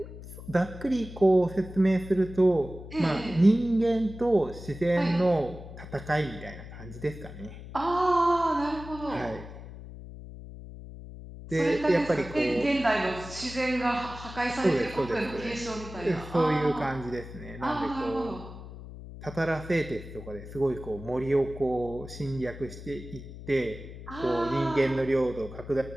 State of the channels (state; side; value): noise; left; hum, 13 dB below the sound